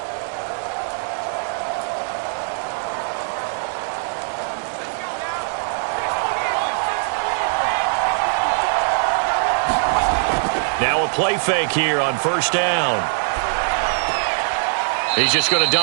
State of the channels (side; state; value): left; silent; digital silence